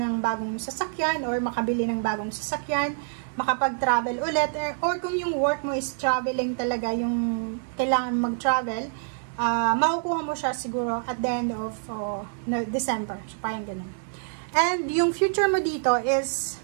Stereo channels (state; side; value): silent; left; digital silence